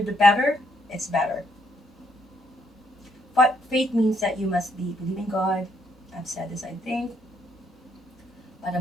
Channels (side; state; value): both; normal; correlation 0.72